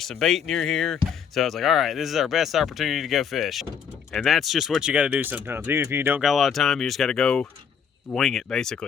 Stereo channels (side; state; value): right; quieter; 7.3 dB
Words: some bait near here. So I was like, all right, this is our best opportunity to go fish. And that's just what you gotta do sometimes. Even if you don't got a lot of time, you just gotta go wing it,